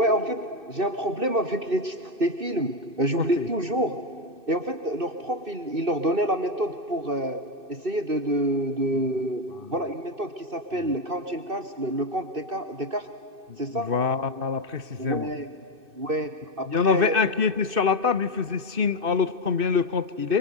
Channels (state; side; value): late; left; 2.6 ms